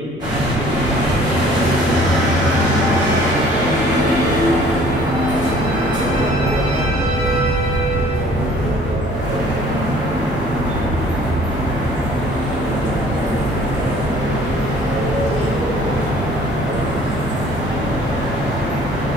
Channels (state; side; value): normal; both; correlation 0.54